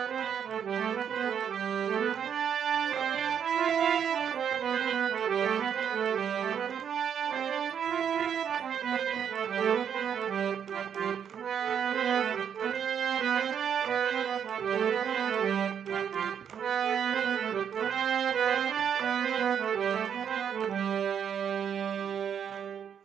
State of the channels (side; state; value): left; quieter; 8.1 dB